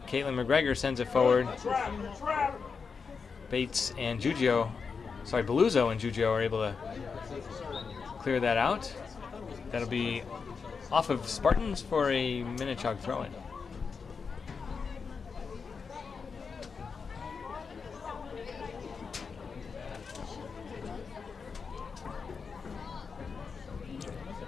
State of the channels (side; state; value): right; quieter; 5.4 dB